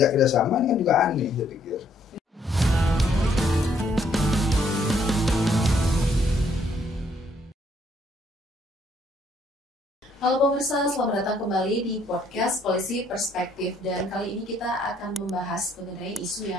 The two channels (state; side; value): normal; both; correlation 0.67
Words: kerjasama ini kan juga aneh saya pikir. Halo pemirsa, selamat datang kembali di podcast Polisi Perspektif. Dan kali ini kita akan membahas mengenai isu